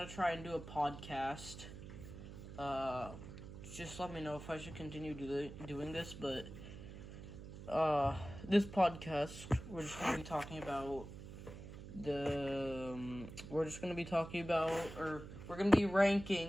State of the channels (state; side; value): noise; right; hum, 12 dB below the sound